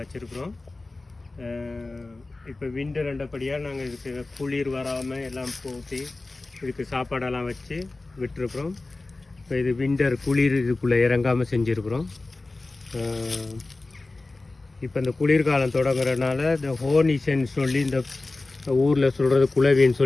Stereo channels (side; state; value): right; quieter; 3.3 dB